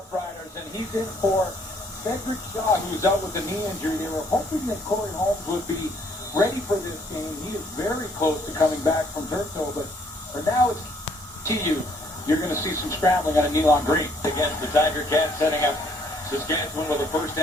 and he's in for Cedric Shaw, who's out with a knee injury. They were hoping that Corey Holmes would be ready for this game. He is very close to coming back from Turtle, but for now it's TU. You're going to see some scrambling on a Neil Green. Against the Tiger Cats, setting up Saskatchewan with a first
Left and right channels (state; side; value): normal; both; correlation 0.65